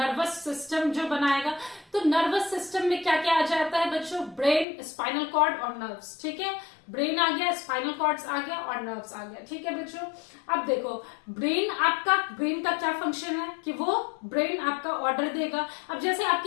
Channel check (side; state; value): right; drops out; at 4.7 s